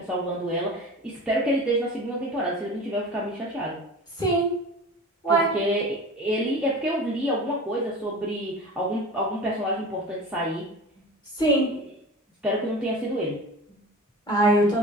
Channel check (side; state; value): both; normal; correlation 0.35